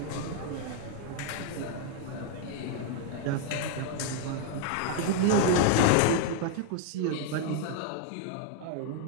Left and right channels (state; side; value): different; both; correlation 0.00